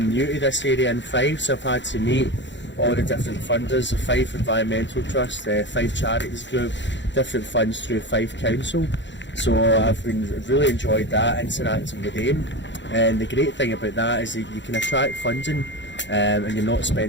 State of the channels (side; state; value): right; late; 0.53 ms